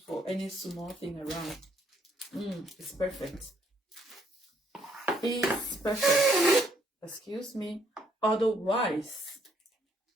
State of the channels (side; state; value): both; normal; correlation 0.70